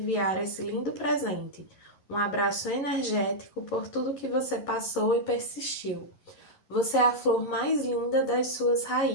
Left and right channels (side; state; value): right; late; 11 ms